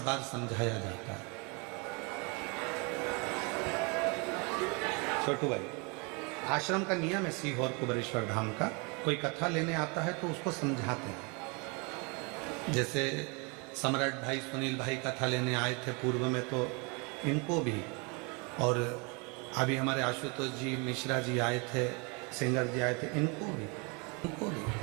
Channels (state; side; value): quieter; left; 31.3 dB